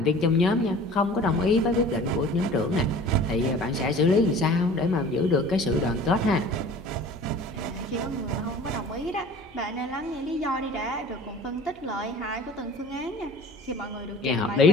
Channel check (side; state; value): both; normal; correlation 0.44